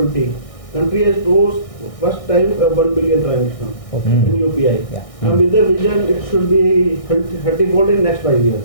country has closed first time 1 billion transactions in UPI. Yeah. And with the vision, it should be 30-fold in next 5 years.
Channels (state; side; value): late; right; 1.6 ms